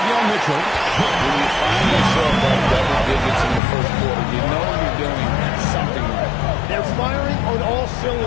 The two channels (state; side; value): drops out; right; at 3.6 s